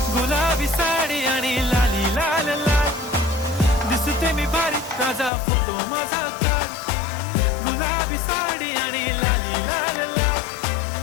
गुलाबी साडी आणि लाली लाल लाल, दिसते मी भारी राजा फोटो माझा काढ. गुलाबी साडी आणि लाली लाल लाल,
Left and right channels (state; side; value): drops out; right; at 5.3 s